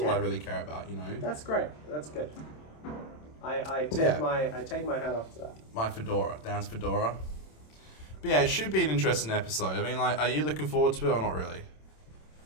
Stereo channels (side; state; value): right; late; 27 ms